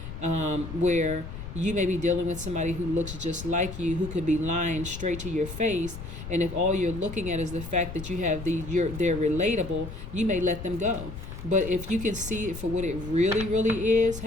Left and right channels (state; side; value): noise; left; rumble, 10 dB below the sound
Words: where you may be dealing with somebody who looks just like you, who could be lying straight to your face, and if all you're looking at is the fact that they're relatable, you may let them go. But if you can see it for what it really, really is,